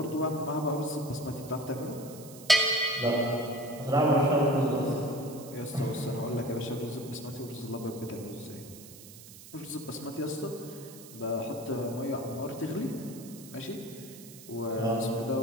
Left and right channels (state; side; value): noise; right; hiss, 17 dB below the sound